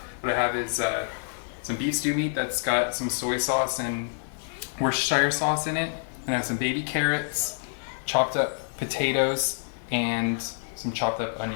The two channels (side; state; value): right; silent; digital silence